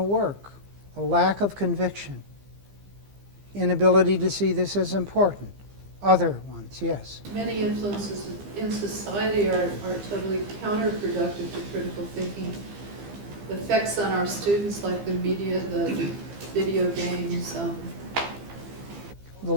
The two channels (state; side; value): late; left; 15 ms